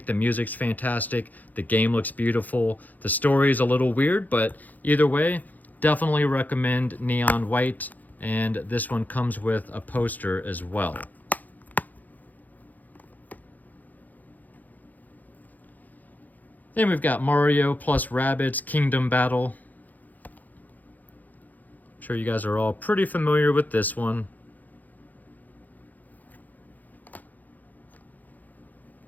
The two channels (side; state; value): right; late; 0.082 ms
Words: The music's fantastic. The game looks beautiful. The story is a little weird, but either way, definitely recommend Neon White. And this one comes with a poster as well. Then we've got Mario plus Rabbids Kingdom Battle. I'm sure you guys are all pretty familiar with this one.